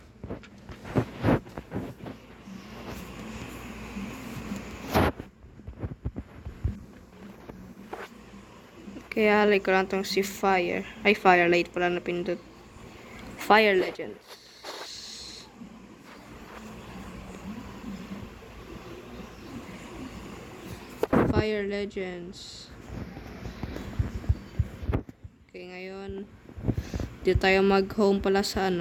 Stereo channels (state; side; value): identical; both; correlation 1.00